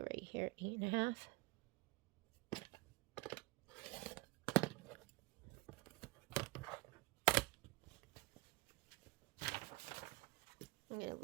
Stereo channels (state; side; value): quieter; left; 21.6 dB